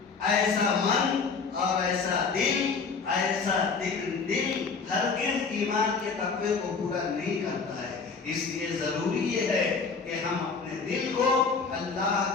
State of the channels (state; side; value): quieter; right; 5.0 dB